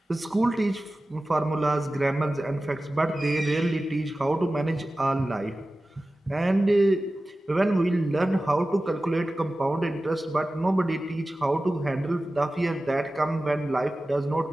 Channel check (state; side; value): normal; both; correlation 0.95